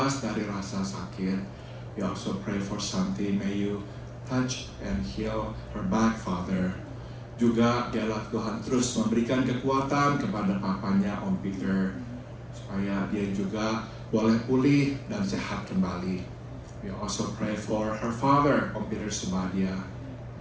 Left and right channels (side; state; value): both; identical; correlation 1.00